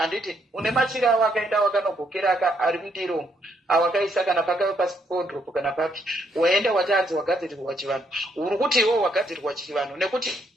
une machira awo akaenda wakanogokera ari mundiro awakaisa kana pakave pasipodropo kana papi waenda watanzi wagadzirirwa chivanhu uri kuti iwo wagadzirirwa chivanhu nekuti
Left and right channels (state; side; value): normal; both; correlation 0.73